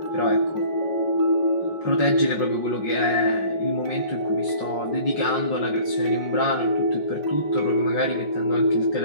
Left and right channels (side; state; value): right; late; 5.4 ms